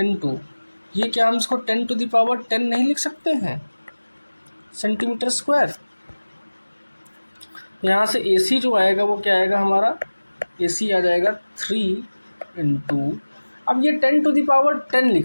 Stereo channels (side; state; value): both; inverted; correlation -1.00